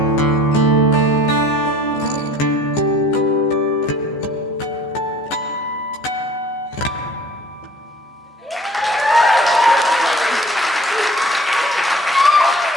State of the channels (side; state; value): both; normal; correlation 0.50